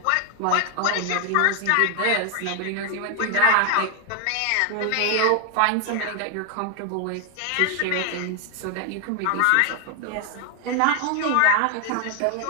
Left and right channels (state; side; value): different; both; correlation 0.01